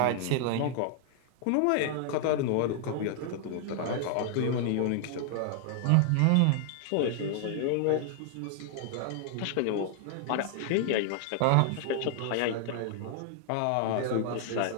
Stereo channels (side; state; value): both; different; correlation 0.00